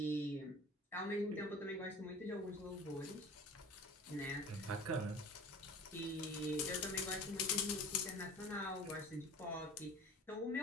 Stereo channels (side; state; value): both; normal; correlation 0.41